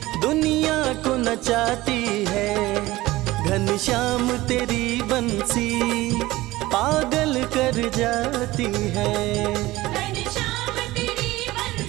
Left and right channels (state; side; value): quieter; left; 18.3 dB